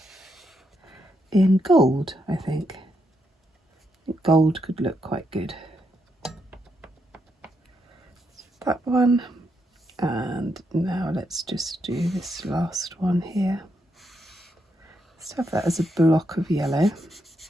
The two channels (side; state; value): both; normal; correlation 0.80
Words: in gold. I think gold could look quite good. That one, and now let's just do this last one here. Let's have that as a block of yellow.